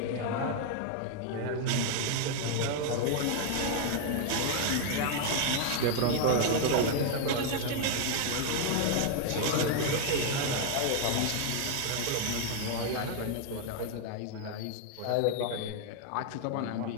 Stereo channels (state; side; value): different; both; correlation 0.00